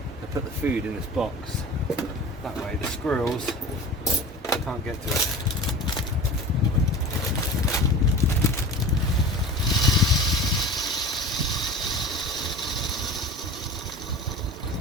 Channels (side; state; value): both; normal; correlation 0.37